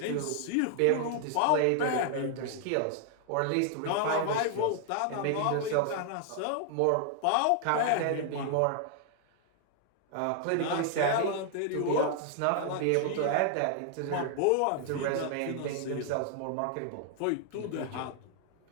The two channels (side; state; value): both; different; correlation 0.00